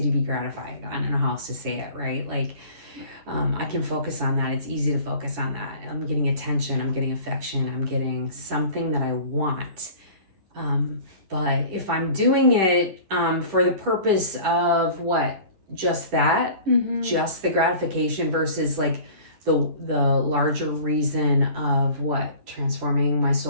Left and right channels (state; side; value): late; left; 10 ms